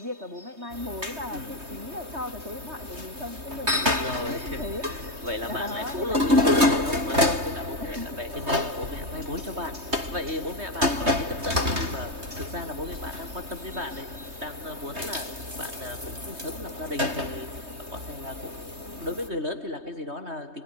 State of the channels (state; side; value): late; left; 3.2 ms